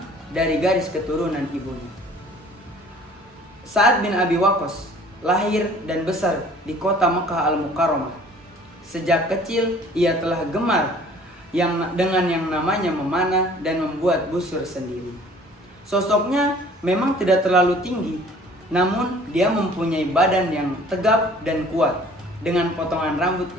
dari garis keturunan ibunya. Sa'ad bin Abi Waqqas lahir dan besar di kota Mekah Al-Mukarramah. Sejak kecil ia telah gemar dengan yang namanya memanah dan membuat busur sendiri. Sosoknya memang tidak terlalu tinggi, namun dia mempunyai badan yang tegap dan kuat dengan potongan rambut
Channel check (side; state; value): both; normal; correlation 0.52